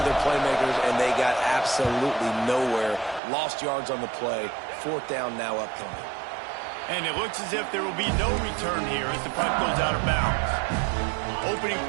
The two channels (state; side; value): drops out; left; at 3.2 s